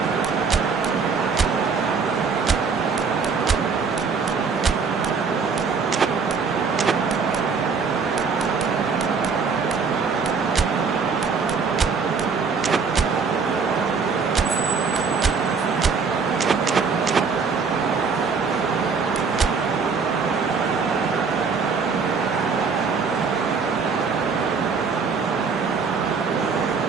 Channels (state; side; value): quieter; left; 5.3 dB